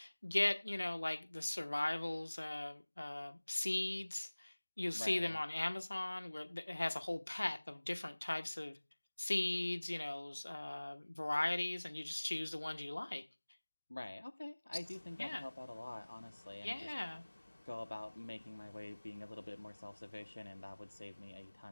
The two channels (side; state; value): both; inverted; correlation -1.00